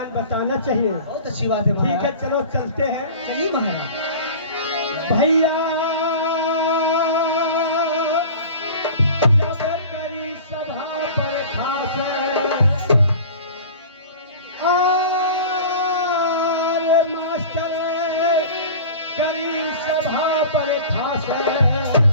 बताना चाहिए। बहुत अच्छी बात है ठीक है महाराज। चलो चलते हैं। चलिए महाराज। भैया जब करी सभा पर खास आरे मास्टर करी सभा पर खास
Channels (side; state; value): both; inverted; correlation -0.38